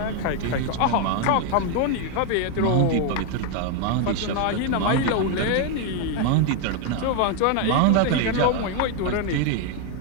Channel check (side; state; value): both; different; correlation 0.01